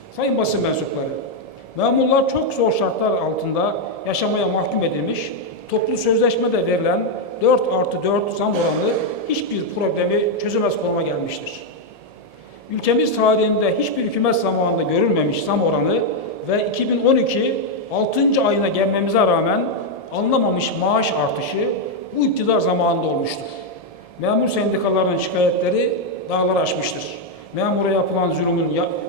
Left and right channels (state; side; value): late; right; 1.7 ms